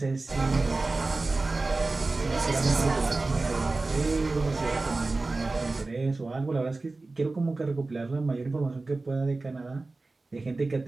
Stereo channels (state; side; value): quieter; left; 3.4 dB